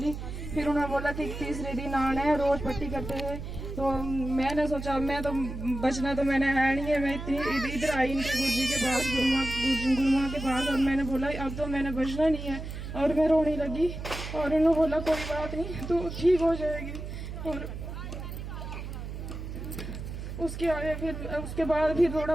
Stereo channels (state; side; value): noise; right; hum, 8 dB below the sound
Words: फिर उन्होंने बोला कि तीसरे दिन आना है, रोज पट्टी करते हैं। तो मैंने सोचा मैं तो बचना तो मैंने है नहीं है, मैं इधर आई इनके गुरुजी के पास, गुरुमा के पास, और मैंने बोला अब तो मैंने बचना नहीं है। और मैं रोने लगी और उन्होंने बोला कोई बात नहीं तो ठीक हो जाएगी। और उसके बाद फिर थोड़ा